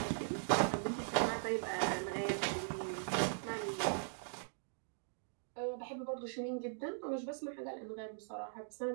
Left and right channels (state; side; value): silent; left; digital silence